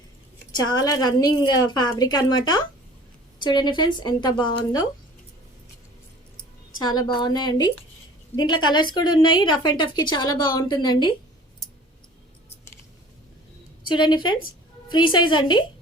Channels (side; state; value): both; normal; correlation 0.47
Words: చాలా రన్నింగ్ ఫ్యాబ్రిక్ అనమాట. చూడండి ఫ్రెండ్స్ ఎంత బాగుందో, చాలా బాగున్నాయండి. దీంట్లో కలర్స్ కూడా ఉన్నాయి. రఫ్ అండ్ టఫ్కి చాలా బాగుంటుందండి. చూడండి ఫ్రెండ్స్, ఫ్రీ సైజ్ అండి,